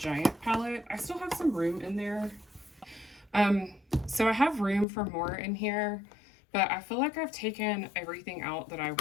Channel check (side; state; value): right; drops out; at 4.9 s